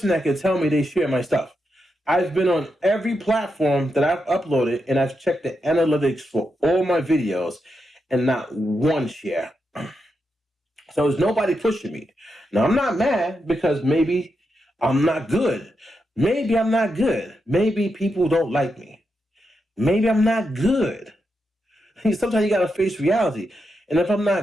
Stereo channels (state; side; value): normal; both; correlation 0.85